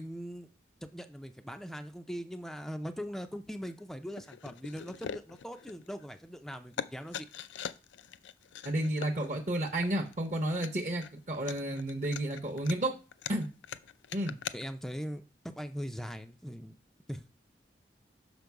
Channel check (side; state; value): both; normal; correlation 0.67